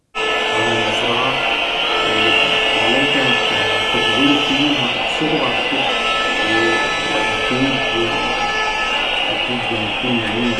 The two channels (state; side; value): identical; both; correlation 1.00